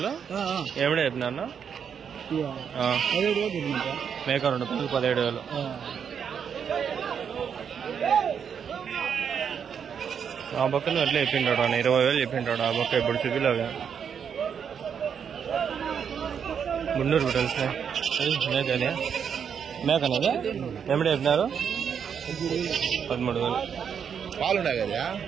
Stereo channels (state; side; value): quieter; left; 7.4 dB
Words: ఏమిడే చెప్పినా మేక 2 పిల్లలు 17,000. ఆ బొక్కను అట్లా చెప్పింటాడు అన్న 20,000 చెప్పింటాడు. ఆ బొక్క ఇప్పుడు చూపిలాగా గుండూరు తెలిసిన మేకనే మేకనేది. ఏమిడే చెప్పినారు? 13,000. పాలున్నాయి కదా